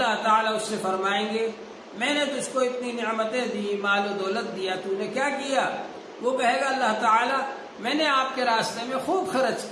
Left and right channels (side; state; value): both; identical; correlation 1.00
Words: تعالیٰ اس سے فرمائیں گے میں نے تجھ کو اتنی نعمتیں دی، مال و دولت دیا، تو نے کیا کیا؟ وہ کہے گا اللہ تعالیٰ میں نے آپ کے راستے میں خوب خرچ